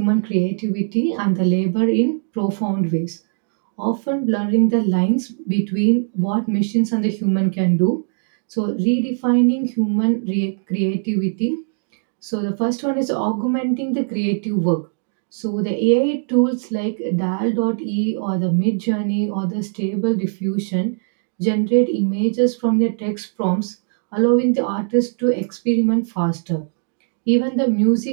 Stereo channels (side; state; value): left; silent; digital silence